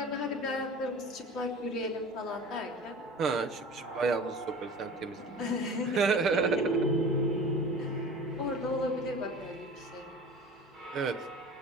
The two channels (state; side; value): normal; both; correlation 0.39